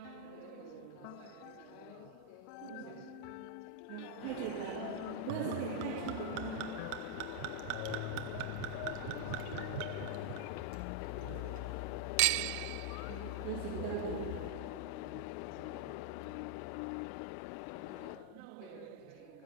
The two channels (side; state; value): both; different; correlation 0.00